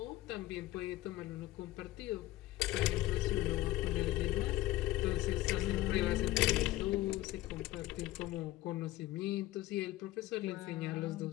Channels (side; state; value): right; quieter; 16.3 dB